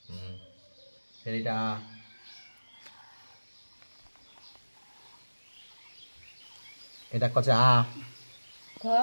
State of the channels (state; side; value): inverted; both; correlation -1.00